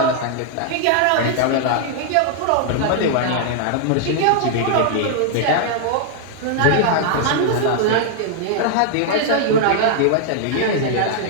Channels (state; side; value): different; both; correlation 0.00